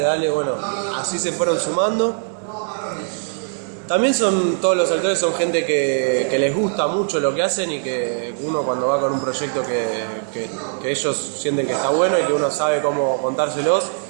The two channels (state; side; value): silent; left; 65 dB below the other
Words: bueno, así se fueron sumando. También todos los actores son gente que les gusta mucho lo que hacen y que uno cuando va con un proyecto que ellos sienten que está bueno y que uno sabe cómo contárselos,